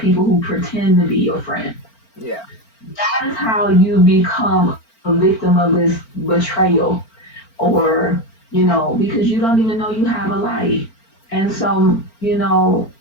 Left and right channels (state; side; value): late; right; 4.4 ms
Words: who pretend to be your friend. Yeah. That is how you become a victim of this betrayal or, because you don't even know you have a light. And so,